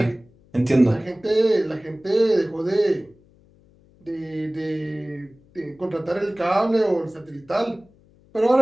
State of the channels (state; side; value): noise; left; hum, 30 dB below the sound